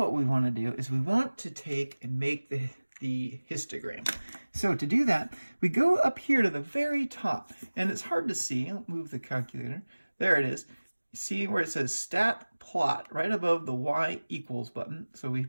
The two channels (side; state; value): both; inverted; correlation -1.00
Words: we want to do is we want to take and make the histogram. So to do that, we go up here to the very top, and it's hard to see. I'll move the calculator. There it is. See where it says stat plot right above the y equals button. So we